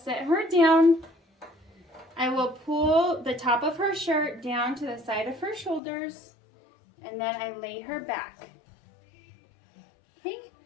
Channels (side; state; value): right; drops out; at 5.8 s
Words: her down. I will pull the top of her shirt down to the side of her shoulders, and then I lay her back. Okay,